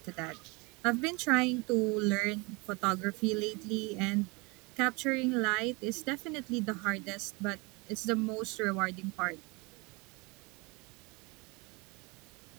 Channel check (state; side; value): quieter; left; 27.7 dB